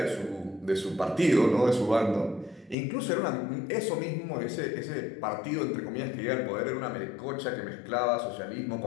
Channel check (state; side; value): drops out; right; at 2.8 s